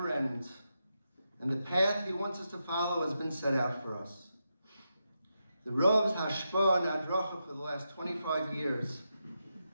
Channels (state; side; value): inverted; both; correlation -0.86